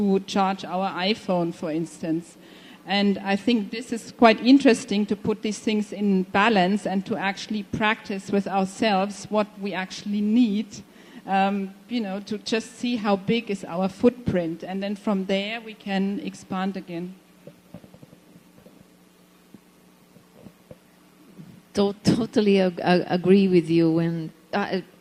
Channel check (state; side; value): identical; both; correlation 1.00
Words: charge our iPhone, for instance. And I think this is quite interesting to put these things in balance and to actually practice with ourselves what we actually need, to just see how big is our footprint. And then from there we can expand again. Totally agree with you. And